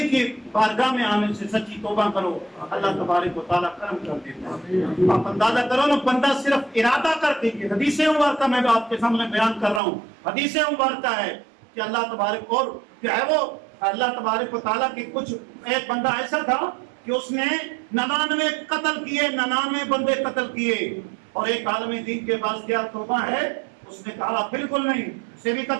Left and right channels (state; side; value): drops out; left; at 9.8 s